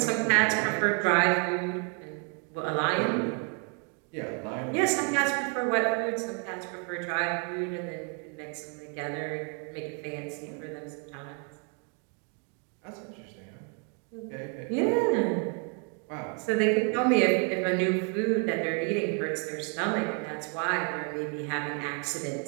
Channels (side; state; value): left; quieter; 39.0 dB